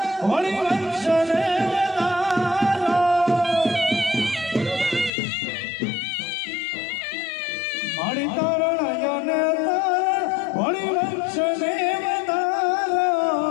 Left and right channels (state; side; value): drops out; right; at 5.1 s